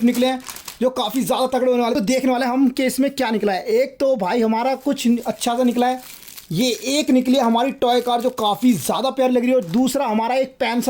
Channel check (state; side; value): identical; both; correlation 1.00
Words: निकले हैं जो काफी ज्यादा तगड़े होने वाले। तो देखने वाले हम कि इसमें क्या निकला है। एक तो भाई हमारा कुछ अच्छा सा निकला है, ये एक निकली है हमारी टॉय कार जो काफी ज्यादा प्यारी लग रही है। और दूसरा हमारा एक पेन